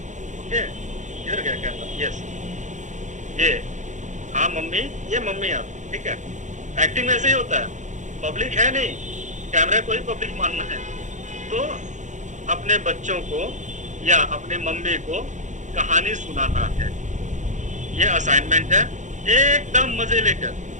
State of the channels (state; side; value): late; left; 0.35 ms